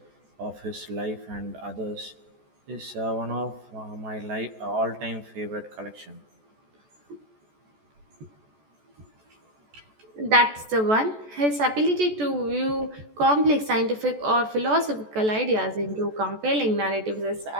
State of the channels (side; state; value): left; late; 14 ms